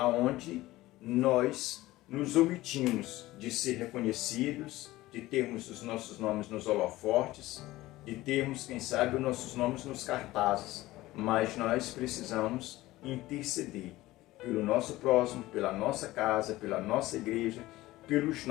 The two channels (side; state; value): right; quieter; 17.6 dB